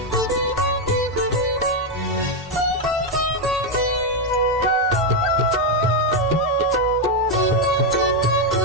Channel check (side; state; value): both; normal; correlation 0.03